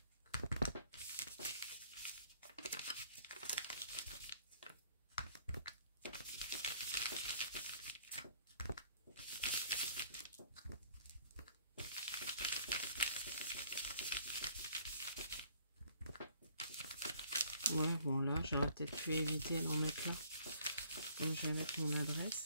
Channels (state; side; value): inverted; both; correlation -0.60